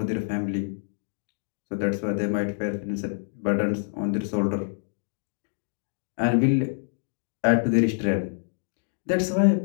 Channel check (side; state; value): right; silent; digital silence